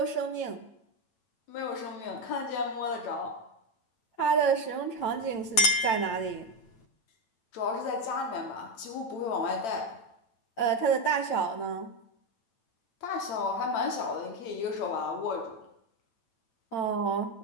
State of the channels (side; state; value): right; late; 8.9 ms